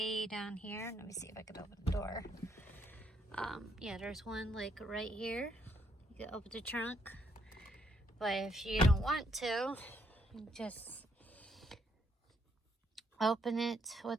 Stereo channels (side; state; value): both; normal; correlation 0.74